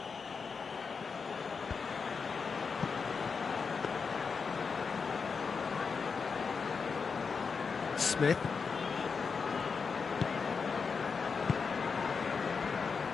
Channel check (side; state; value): right; quieter; 5.4 dB